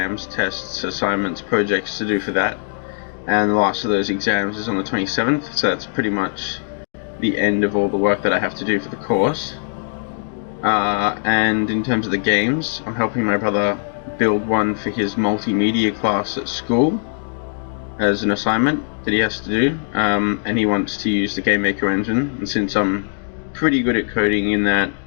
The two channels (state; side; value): silent; right; digital silence